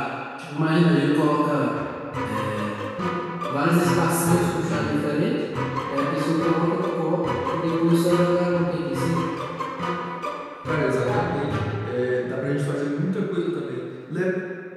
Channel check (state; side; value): identical; both; correlation 1.00